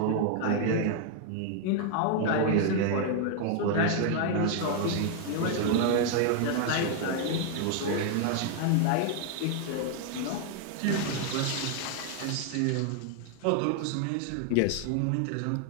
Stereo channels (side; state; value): both; different; correlation 0.00